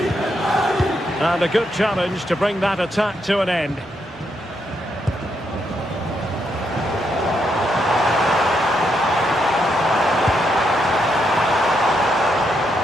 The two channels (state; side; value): normal; both; correlation 0.79